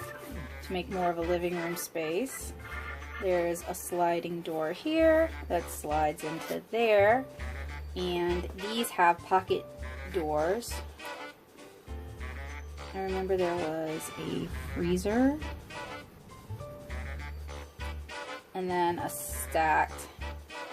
To make more of a living room space. There's a sliding door here that slides into there, and these have pocket doors. I remember there was a freezer and then a stacked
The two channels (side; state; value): both; identical; correlation 1.00